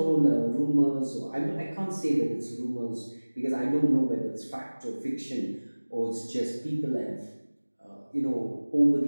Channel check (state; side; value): inverted; both; correlation -1.00